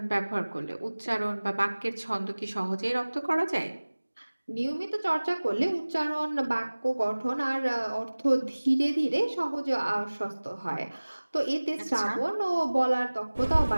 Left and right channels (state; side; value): inverted; both; correlation -1.00